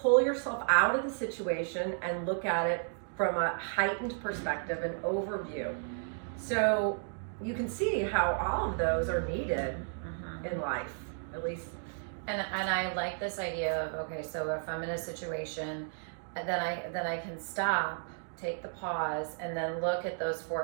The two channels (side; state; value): left; silent; digital silence